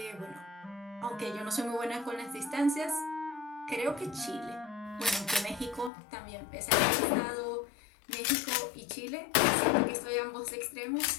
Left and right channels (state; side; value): drops out; right; at 5.9 s